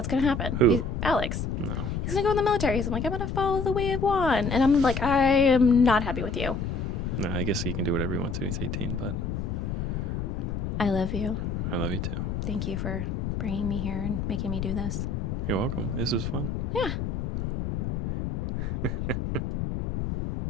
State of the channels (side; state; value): left; noise; rumble, 2 dB below the sound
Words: going to happen? Who? Alex. No. He's going to go in the military. So I'm like, I'm going to follow the way of Juan. And I'm like, I am not happy with you. No, I guess he can do whatever he wants to. He's 18, but I love you. I love you, too. Thank you for bringing me here and making me do this. You're welcome. This was fun. Yeah.